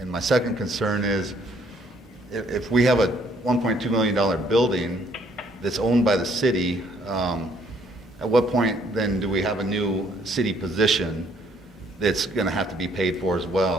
my second concern is if we have a $1.2 million building that's owned by the city, at what point then do we have a new city position that's going to have to be paid for as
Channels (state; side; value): normal; both; correlation 0.65